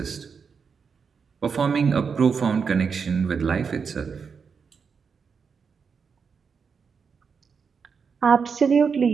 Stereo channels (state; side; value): quieter; left; 5.9 dB